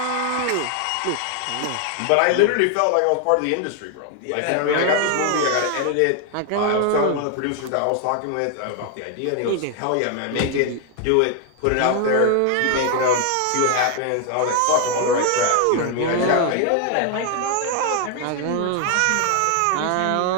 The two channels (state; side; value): different; both; correlation 0.00